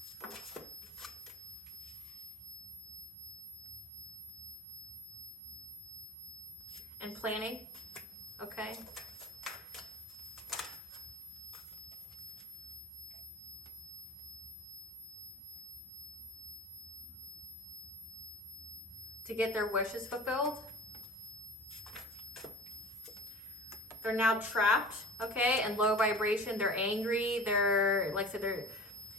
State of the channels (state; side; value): normal; both; correlation 0.38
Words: and planning, okay? To get their wishes fulfilled. They're now trapped, okay, in low vibration. They're angry. They're, like I said, they're,